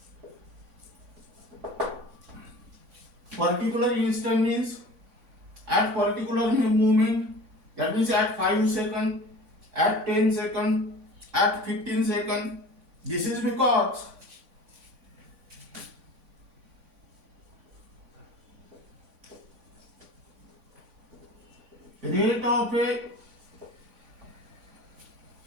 Particular instant means at particular moment, that means at 5 seconds, at 10 seconds, at 15 seconds. This is because rate of a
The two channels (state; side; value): late; left; 3.5 ms